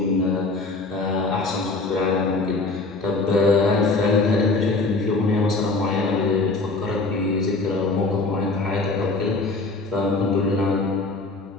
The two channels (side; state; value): right; quieter; 3.5 dB